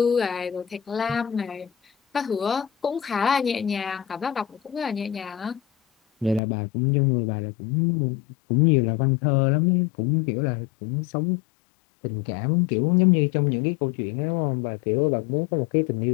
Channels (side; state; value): right; drops out; at 6.4 s